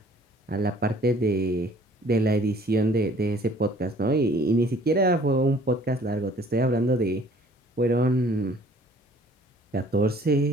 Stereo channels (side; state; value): both; normal; correlation 0.55